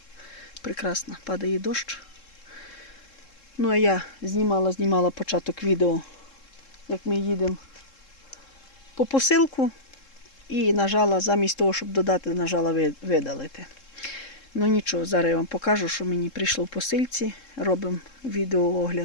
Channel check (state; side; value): late; right; 3.7 ms